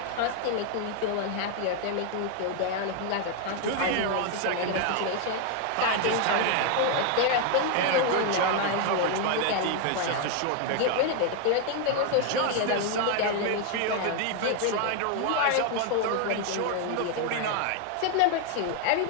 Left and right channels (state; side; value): different; both; correlation 0.01